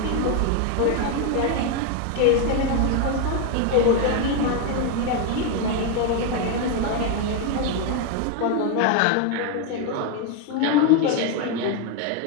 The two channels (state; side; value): different; both; correlation 0.01